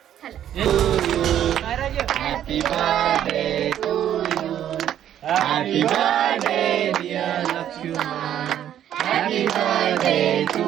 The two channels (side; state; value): left; quieter; 10.8 dB